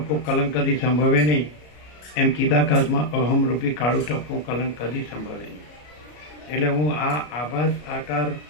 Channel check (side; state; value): right; late; 33 ms